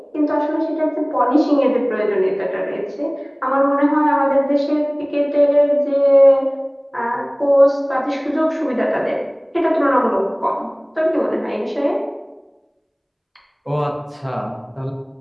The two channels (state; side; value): identical; both; correlation 1.00